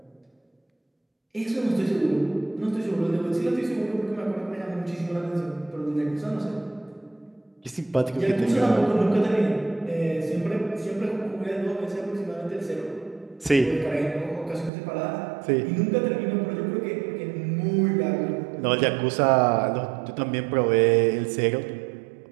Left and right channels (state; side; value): drops out; left; at 14.7 s